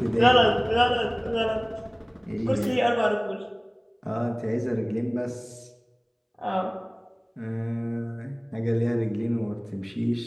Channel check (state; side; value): identical; both; correlation 1.00